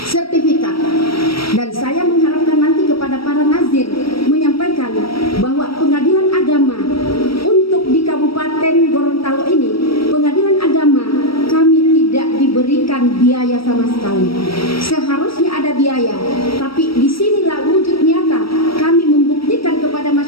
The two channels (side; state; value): right; late; 0.75 ms